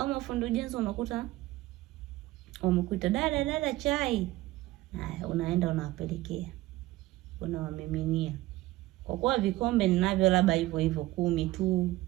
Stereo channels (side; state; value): left; quieter; 17.6 dB